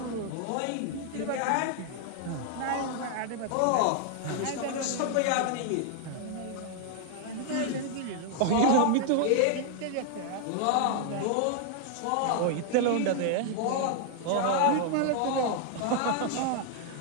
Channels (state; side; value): different; both; correlation 0.00